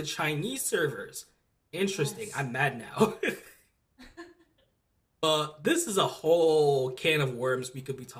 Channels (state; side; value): identical; both; correlation 1.00